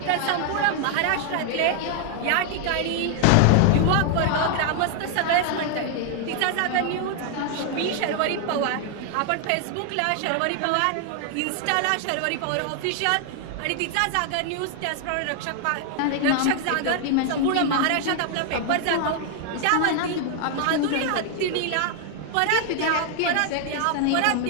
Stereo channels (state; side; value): different; both; correlation 0.00